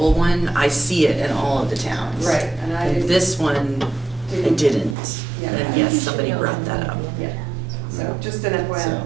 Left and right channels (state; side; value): drops out; left; at 5.0 s